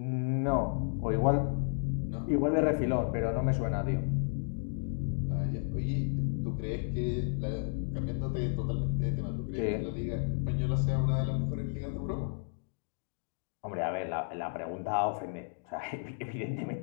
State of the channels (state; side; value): silent; right; digital silence